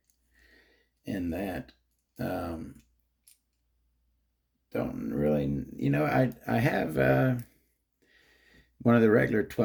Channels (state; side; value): identical; both; correlation 1.00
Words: in that. don't really, I have one of the regular